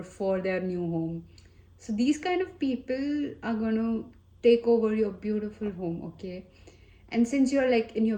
for their new home. So these kind of people are going to take over your beautiful home, okay? And since you're like in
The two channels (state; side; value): identical; both; correlation 1.00